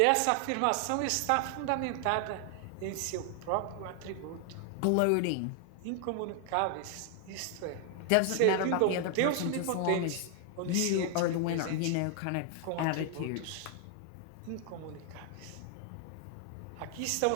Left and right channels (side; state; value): both; different; correlation 0.00